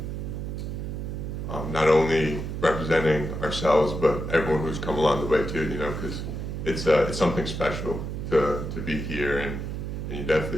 not only representing ourselves, but everyone who's come along the way too, you know, because it's something special to be here, and you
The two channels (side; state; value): right; noise; hum, 5 dB below the sound